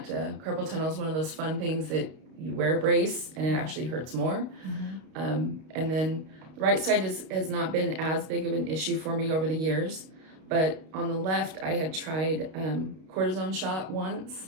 Carpal tunnel is one of those fun things that you wear a brace and it actually hurts more. And then The right side has not been as big of an issue for me over the years, but on the left, I had tried cortisone shot once.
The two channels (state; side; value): late; left; 32 ms